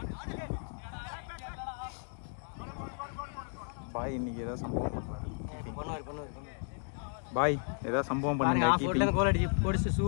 பாய் இன்னைக்கு ஏதாவது சம்பவம் பண்ணுவாரு. பாய் ஏதாவது சம்பவம் பண்ணுங்க. கீப்பிங் கோல் அடிச்சு போடிச்சு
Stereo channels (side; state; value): right; silent; 55 dB below the other